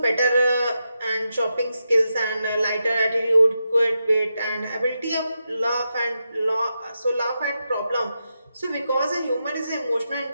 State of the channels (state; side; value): inverted; both; correlation -0.87